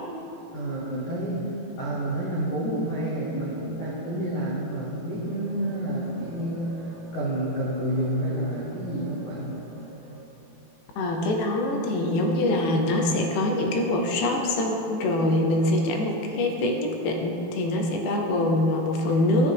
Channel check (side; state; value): right; late; 18 ms